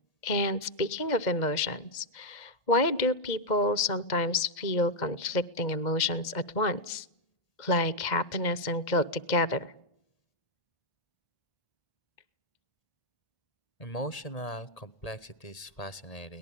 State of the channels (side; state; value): right; late; 2.0 ms